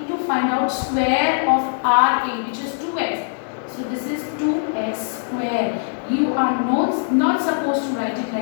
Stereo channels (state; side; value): silent; right; 65 dB below the other